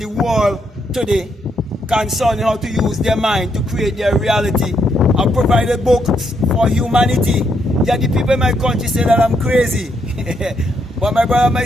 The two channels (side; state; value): both; normal; correlation 0.76